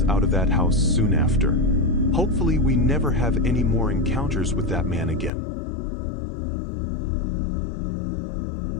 out of that house soon after. Hopefully, we never have any more encounters with that man again.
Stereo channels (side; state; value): right; drops out; at 5.3 s